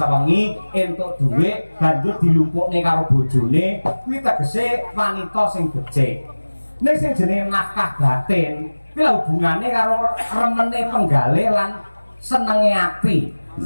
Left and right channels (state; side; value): inverted; both; correlation -1.00